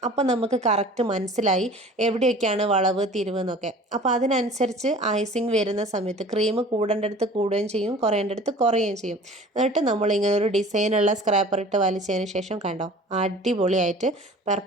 അപ്പോൾ നമുക്ക് കറക്റ്റ് മനസ്സിലായി എവിടെയൊക്കെയാണ് വളവ് തിരിവ് എന്നൊക്കെ. അപ്പോൾ അതിനനുസരിച്ച് ഐസിങ് വരുന്ന സമയത്ത് ക്രീം കൂടേണ്ടടുത്ത് കൂടുകയും ചെയ്യും, കുറയേണ്ടടുത്ത് കുറയുകയും ചെയ്യും. എന്നിട്ട് നമ്മളിങ്ങനെ ഒരു ഡിസൈനുള്ള സ്ക്രാപ്പർ ഇട്ട് വലിച്ചതിന് ശേഷം കണ്ടോ, അടിപൊളിയായിട്ട്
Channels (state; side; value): normal; both; correlation 0.45